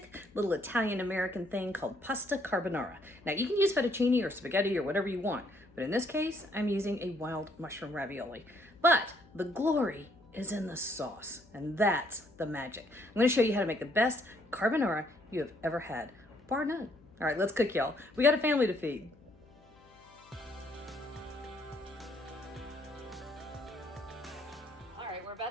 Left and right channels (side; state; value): left; noise; hum, 27 dB below the sound